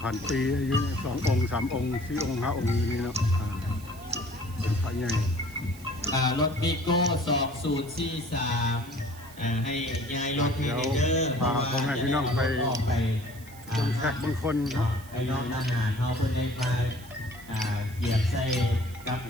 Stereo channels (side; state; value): right; noise; hiss, 21 dB below the sound